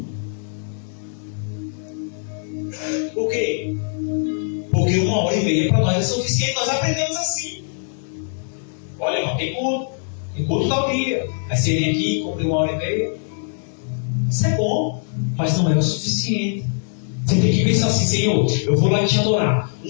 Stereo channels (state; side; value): silent; right; digital silence